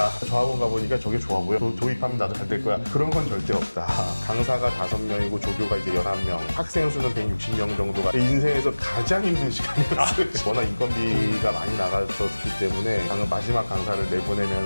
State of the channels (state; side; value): inverted; both; correlation -1.00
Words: 저 학원 가보니까 저게 좋아 보여. 도입하면 나도 잘 될 거야. 그런 건 절대 없다. 강사가 5명이고 조교가 이제 11명, 학생 수는 160명 정도가 인생에서 가장 힘든 시간이었어요. 워낙 인건비가 많이 나갔었기 때문에 마지막 강사를